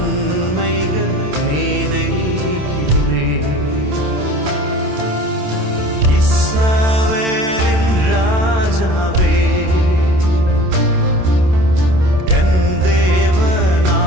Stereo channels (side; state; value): left; late; 27 ms